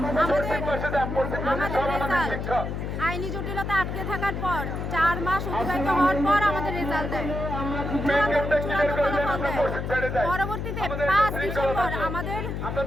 রেজাল্ট আইনি জটিলতা আটকে থাকার পর 4 মাস অতিবাহিত হওয়ার পর আমাদের রেজাল্ট দেয়, চূড়ান্ত ফলাফল দেয়। পরবর্তীতে 5 ডিসেম্বর আমাদের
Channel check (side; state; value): left; noise; hum, 4 dB below the sound